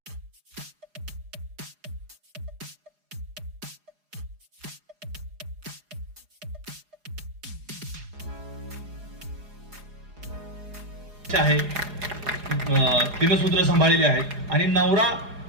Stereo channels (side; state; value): left; late; 4.8 ms